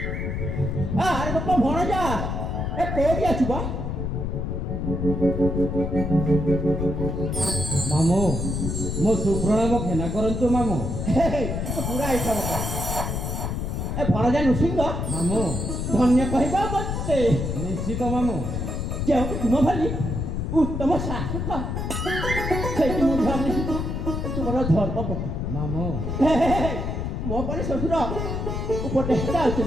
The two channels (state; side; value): noise; left; rumble, 2 dB below the sound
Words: ଆରେ ବାପା ଭଣଜା ଏ କୋଉଠି ଅଛୁ ବା ମାମୁଁ ମୋ ସୁପ୍ରଣାମ ଘେନା କରନ୍ତୁ ମାମୁଁ ପୁରା ହେଇଥା ବାପା ଏ ଭଣଜା ନୃସିଂହ ମାମୁଁ ଧନ୍ୟ କହିବା ମତେ ନିଶ୍ଚିତ ମାମୁଁ ଯେଉଁଠି ତୁମ ଭଳି ଉତ୍ତମ ଶାସକ ସେଇଠି ମୁଁ ଭାବିଛି ତୁମର ଧର୍ମପତି ମାମୁଁ ମୋ ପରେ ଶ୍ୱଶୁର ଉପଦେଷ୍ଟା